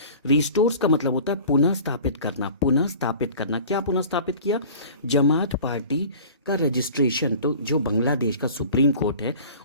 का मतलब होता है पुनः स्थापित करना, पुनः स्थापित करना। क्या पुनः स्थापित किया? जमात पार्टी का रजिस्ट्रेशन। तो जो बांग्लादेश का सुप्रीम कोर्ट है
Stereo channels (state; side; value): inverted; both; correlation -0.43